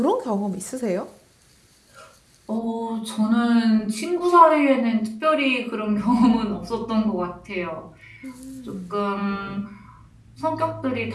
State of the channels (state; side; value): identical; both; correlation 1.00